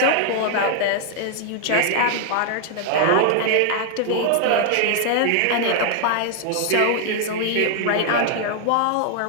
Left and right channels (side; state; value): both; different; correlation 0.00